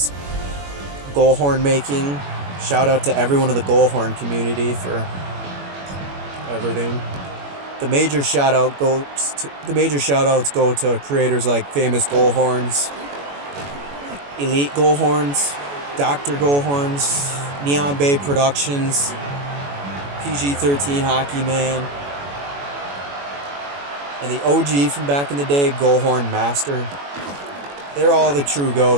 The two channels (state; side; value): late; left; 21 ms